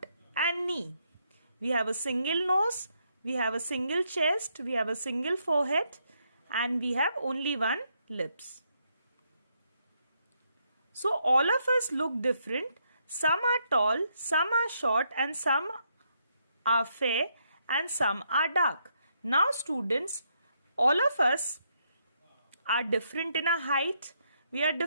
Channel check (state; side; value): inverted; both; correlation -0.76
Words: and knee. We have a single nose, we have a single chest, we have a single forehead and we have only one lips. So all of us look different. Some are tall, some are short and some are fair and some are dark. Now students, all of us are different in our height, we are